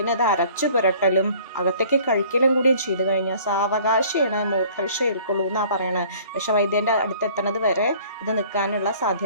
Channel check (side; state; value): both; inverted; correlation -0.52